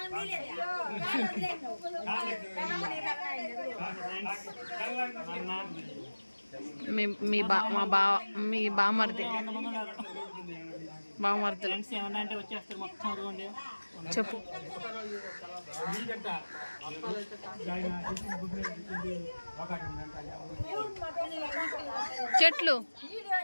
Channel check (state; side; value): inverted; both; correlation -1.00